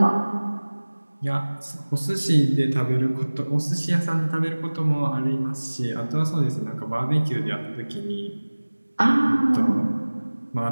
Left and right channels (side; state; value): both; inverted; correlation -1.00